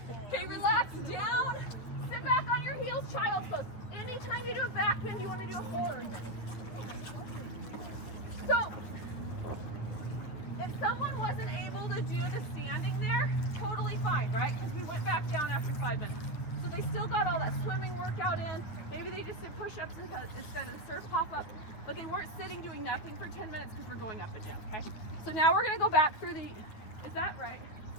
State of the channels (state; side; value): late; right; 9.2 ms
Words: Okay, relax down. Sit back on your heels, child's pose. Anytime you do a back bend, you want to do a forward bend. So, if someone wasn't able to do the standing there, totally fine, right? Because we went back down after 5 minutes. So they still got all that swimming workout in. Maybe they just did push-ups instead of the surf pop-up, but they weren't sitting doing nothing for 10 minutes because we're going up and down, okay? So now we're gonna go back through the, is that right?